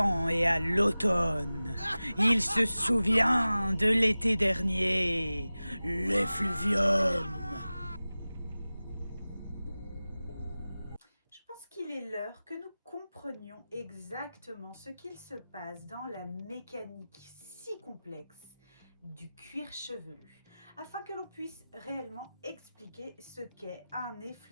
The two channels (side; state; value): both; inverted; correlation -0.97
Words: et à l'automne. Il se souvient de l'été dernier, l'effluvium. Je pense qu'il est l'heure que nous comprenions exactement ce qu'il se passe dans la mécanique si complexe du cuir chevelu, afin que l'on puisse réellement expliquer ce qu'est un